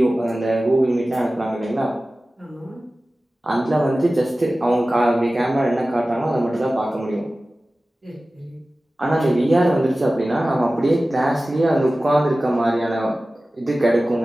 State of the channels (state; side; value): normal; both; correlation 0.96